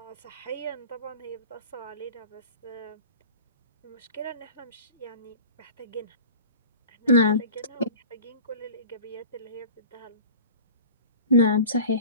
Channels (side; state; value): both; inverted; correlation -0.39